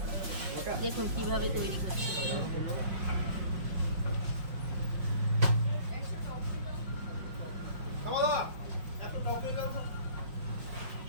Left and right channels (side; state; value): left; late; 5.5 ms